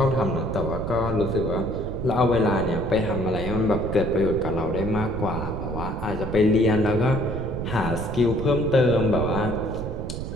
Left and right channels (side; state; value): right; noise; rumble, 6 dB below the sound